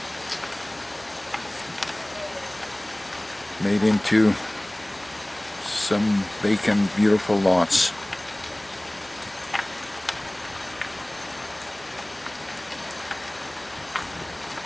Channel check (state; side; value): noise; left; hum, 29 dB below the sound